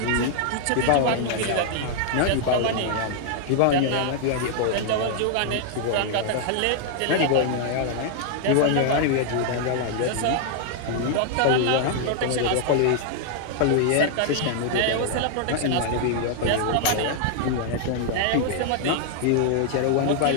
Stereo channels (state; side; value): different; both; correlation 0.00